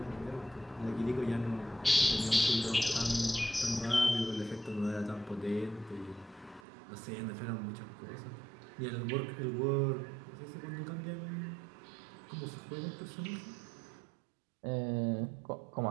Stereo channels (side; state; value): left; drops out; at 6.6 s